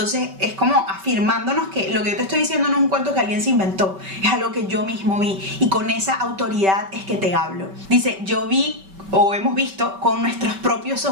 es como afirmándonos que lo que yo te estoy diciendo no es un cuento que alguien se inventó, es algo que yo mismo vi, y con esa autoridad es que te hablo. Dice: yo vi, o hemos visto con nuestros propios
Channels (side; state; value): left; late; 5.2 ms